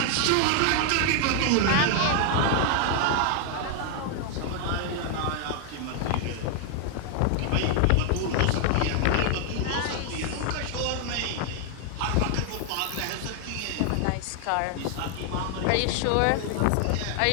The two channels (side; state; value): both; different; correlation 0.00